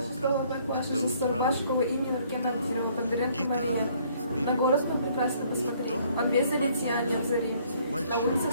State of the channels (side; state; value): both; inverted; correlation -0.63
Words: класса жас школы имени Нуркен Абдирова Бондаренко Мария. На город прекрасно посмотри, он весь залит сиянием зари. На улицах